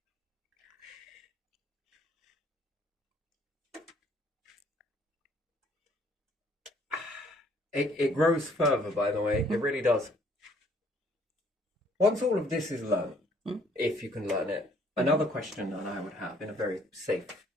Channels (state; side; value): normal; both; correlation 0.62